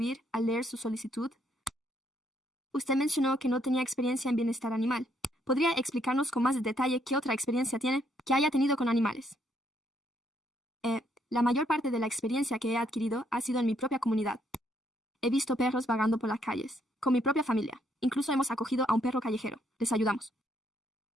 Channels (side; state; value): both; normal; correlation 0.72